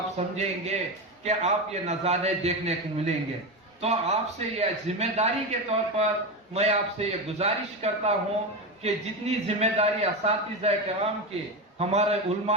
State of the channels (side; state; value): both; normal; correlation 0.17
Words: سمجھیں گے کہ آپ یہ نظارے دیکھنے کو ملیں گے. تو آپ سے یہ ذمہ داری کے طور پر میں آپ سے یہ گزارش کرتا ہوں کہ جتنی ذمہ داری اساتذہ کرام کے، ہمارے